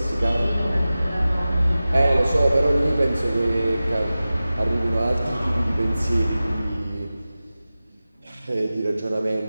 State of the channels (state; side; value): inverted; both; correlation -0.95